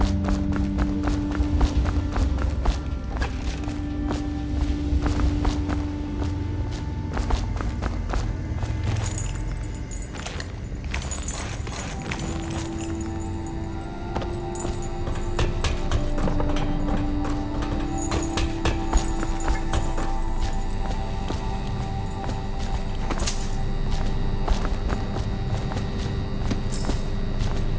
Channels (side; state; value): both; identical; correlation 1.00